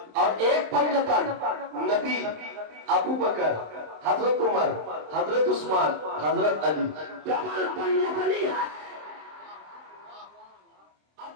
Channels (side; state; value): left; late; 27 ms